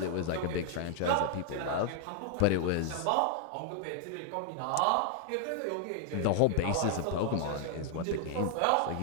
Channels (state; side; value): different; both; correlation 0.00